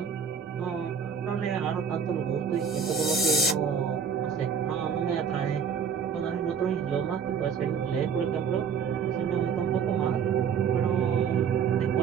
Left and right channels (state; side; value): quieter; left; 6.8 dB